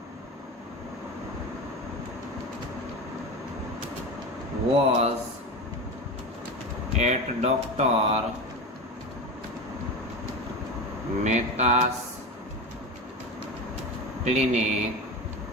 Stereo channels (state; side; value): normal; both; correlation 0.24